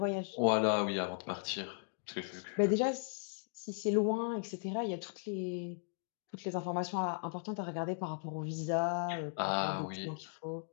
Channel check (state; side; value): silent; right; digital silence